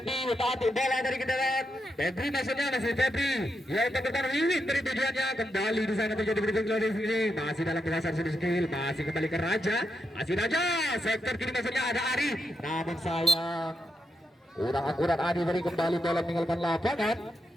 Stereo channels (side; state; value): both; normal; correlation 0.84